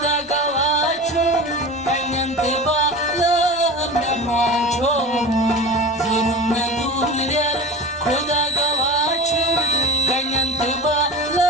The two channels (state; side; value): normal; both; correlation 0.32